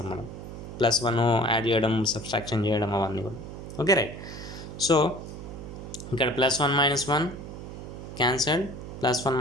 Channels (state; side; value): noise; right; hum, 11 dB below the sound